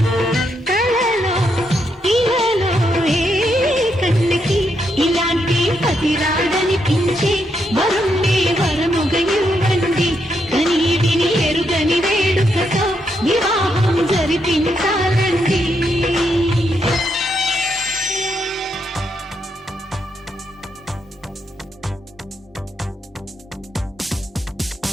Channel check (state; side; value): normal; both; correlation 0.79